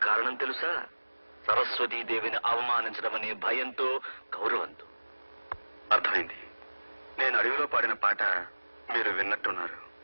కారణం తెలుసా? సరస్వతీదేవిని అవమానించడం అనే భయంతో, గౌరవంతో. అర్థమైంది. నేను అడవిలో పాడిన పాట మీరు విన్నట్టున్నారు,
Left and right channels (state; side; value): inverted; both; correlation -1.00